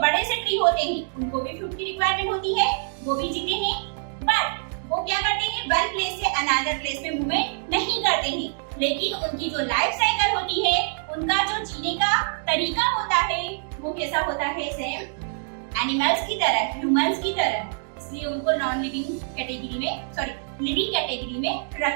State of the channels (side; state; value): left; silent; digital silence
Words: से ट्री होते हैं उनको भी फूड की रिक्वायरमेंट होती है, वो भी जीते हैं। बट वो क्या करते हैं? वन प्लेस से अनदर प्लेस में मूवमेंट नहीं करते हैं, लेकिन उनकी जो लाइफ साइकिल होती है, उनका जो जीने का तरीका होता है, वो कैसा होता है? सेम एनिमल्स की तरह, ह्यूमंस की तरह। इसलिए उनको नॉन लिविंग कैटेगरी में, सॉरी लिविंग कैटेगरी में